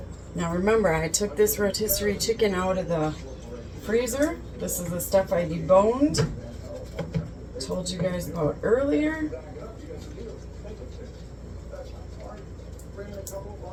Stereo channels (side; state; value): both; identical; correlation 1.00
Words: Now remember, I took this rotisserie chicken out of the freezer. This is the stuff I deboned. Told you guys about earlier.